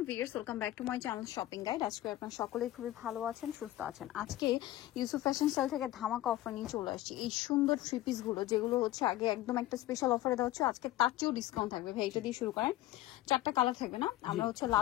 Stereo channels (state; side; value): quieter; right; 15.2 dB